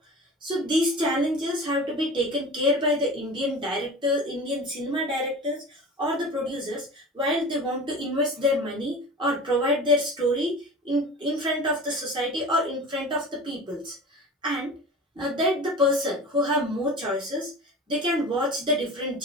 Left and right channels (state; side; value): normal; both; correlation 0.36